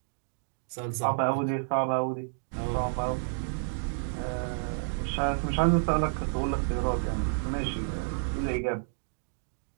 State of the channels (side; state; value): left; silent; digital silence